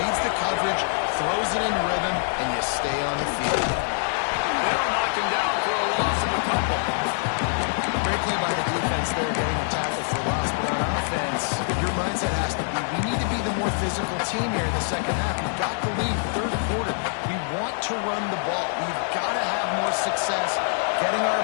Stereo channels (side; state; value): right; silent; 62 dB below the other